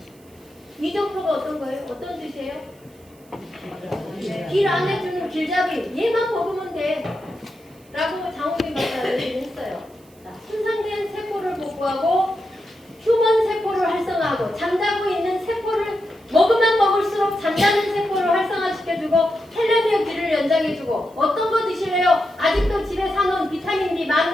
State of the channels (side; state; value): right; noise; hiss, 29 dB below the sound